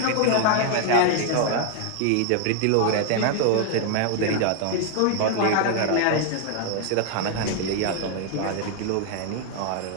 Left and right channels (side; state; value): both; different; correlation 0.00